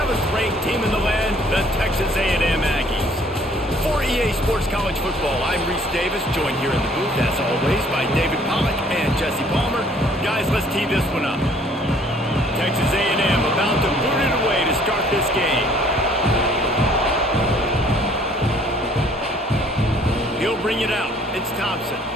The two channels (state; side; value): normal; both; correlation 0.59